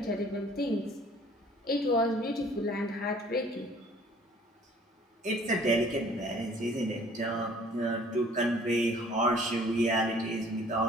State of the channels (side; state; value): both; normal; correlation 0.54